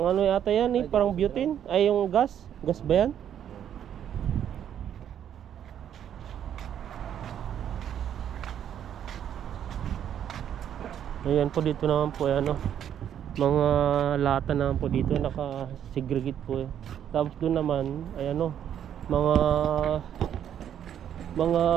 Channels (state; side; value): quieter; left; 9.7 dB